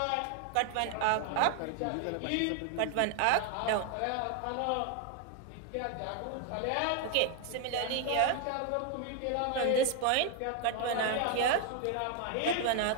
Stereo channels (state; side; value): different; both; correlation 0.00